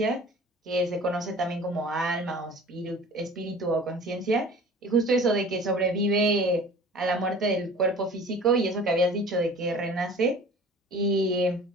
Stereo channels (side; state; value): both; normal; correlation 0.44